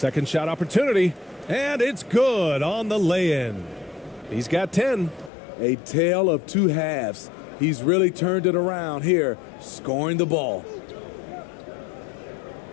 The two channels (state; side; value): drops out; right; at 5.3 s